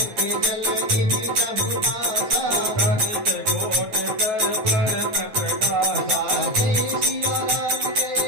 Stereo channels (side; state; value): left; late; 9.3 ms